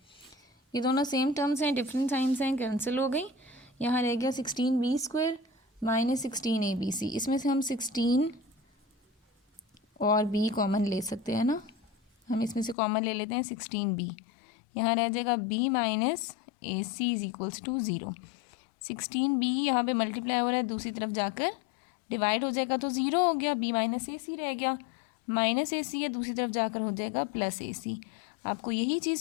ये दोनों सेम टर्म्स हैं, डिफरेंट साइंस हैं, कैंसिल हो गई। यहाँ रह गया 16B² -16 ABC। इसमें से हम 16 और B कॉमन ले सकते हैं ना, हम इसमें से कॉमन ले लेते हैं 16B। यहाँ रह जाएगा B - AC is equals to 0। 16B यहाँ पे मल्टीप्लाई हो रहा है, दूसरी तरफ जाकर डिवाइड हो जाएगा तो 0 हो गया, B - AC रह गया, -AC है, दूसरी तरफ जाकर हो जाएगा +AC। आपको यही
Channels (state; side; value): drops out; right; at 12.8 s